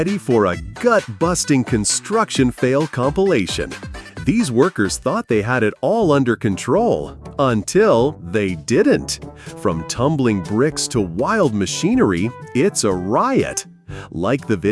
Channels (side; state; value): both; identical; correlation 1.00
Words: for a gut-busting construction fail compilation. These workers thought they had it all under control, until they didn't. From tumbling bricks to wild machinery, it's a riot. Like the